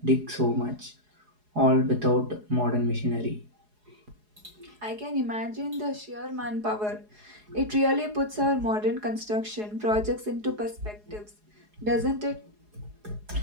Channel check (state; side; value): late; left; 4.8 ms